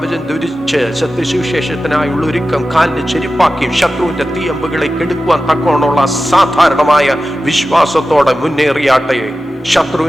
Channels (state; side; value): normal; both; correlation 0.94